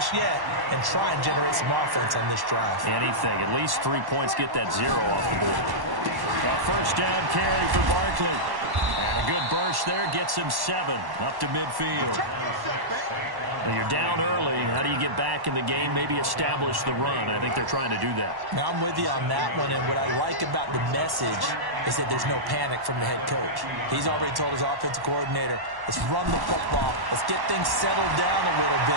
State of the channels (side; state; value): left; late; 1.1 ms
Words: yet and try and generate some offense on this drive. Anything. At least 3 points, get that 0 off the board. A 1st down carry for Barkley. And a good burst there gets him 7 up to midfield. Well, you're down early. How do you get back in the game? Maybe establish the run. I think they're trying to do that. Now, I'm with you on that one, and what I like about the message is that there's no panic from the head coach. He's already told his offensive coordinator, let's run the football, let's get things settled down a little